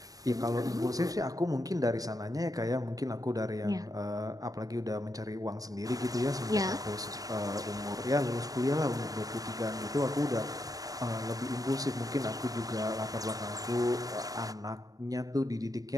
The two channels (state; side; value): late; left; 0.18 ms